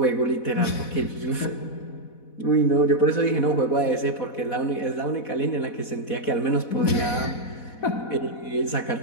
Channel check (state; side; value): late; right; 4.1 ms